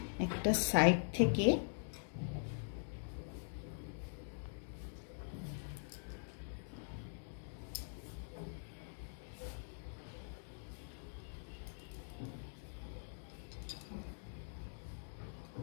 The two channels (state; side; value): silent; right; digital silence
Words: একটা সাইড থেকে